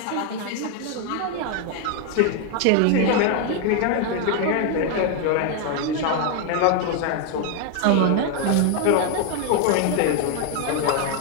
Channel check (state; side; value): different; both; correlation 0.00